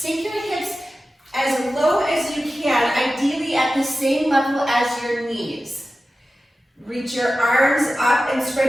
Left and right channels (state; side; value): normal; both; correlation 0.94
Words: your hips as low as you can, ideally at the same level as your knees. Reach your arms up and